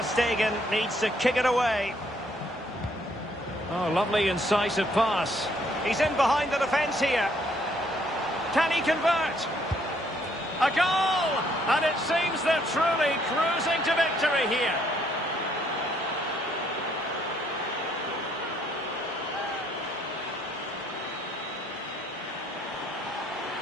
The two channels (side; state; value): both; normal; correlation 0.67